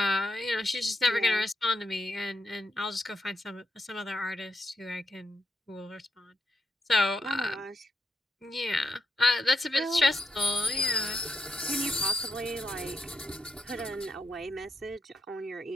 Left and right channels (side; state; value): both; normal; correlation 0.82